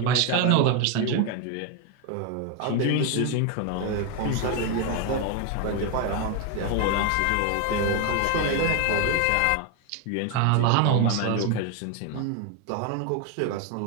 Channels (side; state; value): both; different; correlation 0.01